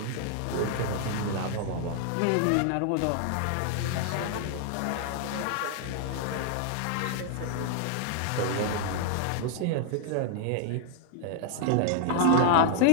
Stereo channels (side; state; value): both; different; correlation 0.00